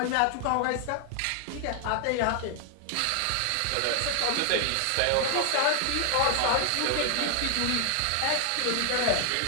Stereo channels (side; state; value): both; different; correlation 0.00